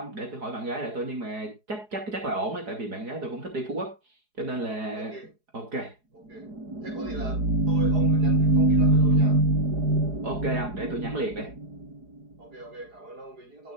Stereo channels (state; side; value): late; left; 4.8 ms